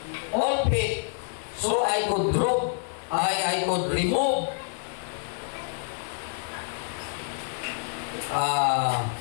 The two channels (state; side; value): silent; right; digital silence